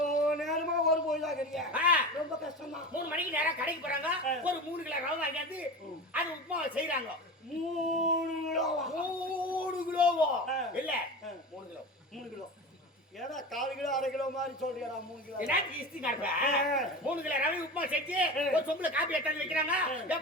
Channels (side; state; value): both; normal; correlation 0.29